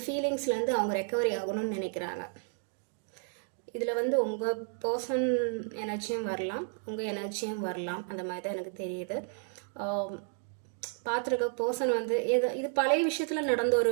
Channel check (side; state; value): left; silent; 56 dB below the other